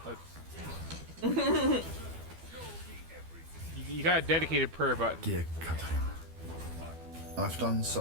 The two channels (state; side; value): late; left; 12 ms